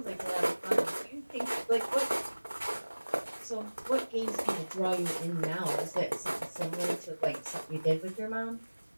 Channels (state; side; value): inverted; both; correlation -1.00